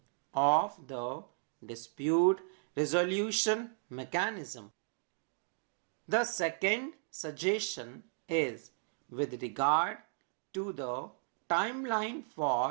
of the dispute resolution mechanism. The second suggestion is with regard to the timeline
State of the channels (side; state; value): left; silent; digital silence